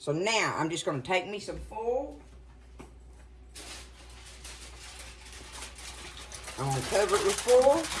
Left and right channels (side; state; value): both; identical; correlation 1.00